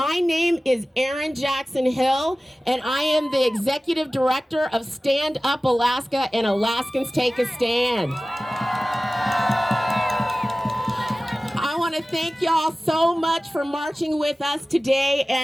name is Erin Jackson Hill, and I am the Executive Director of Stand Up Alaska and Alaskans Take a Stand. I want to thank y'all so much for marching with us today,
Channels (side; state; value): both; normal; correlation 0.97